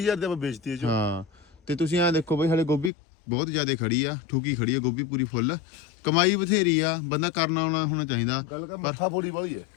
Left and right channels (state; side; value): drops out; right; at 2.9 s